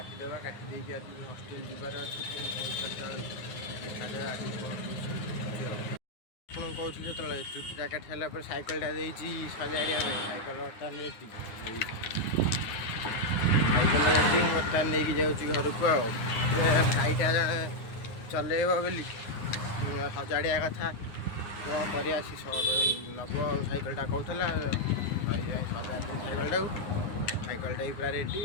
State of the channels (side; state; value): right; late; 9.5 ms